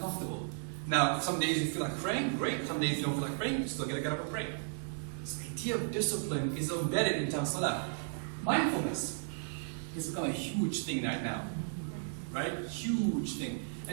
Now, some days you feel like praying, great. Some days you don't feel like praying, you still got to get up and pray. So the idea of discipline is embedded in Salah. Mindfulness has become a huge thing right now, right? Huge thing.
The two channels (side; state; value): left; silent; digital silence